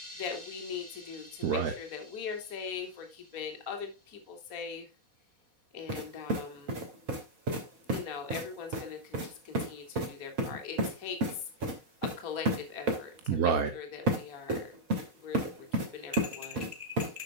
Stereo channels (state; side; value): late; left; 4.1 ms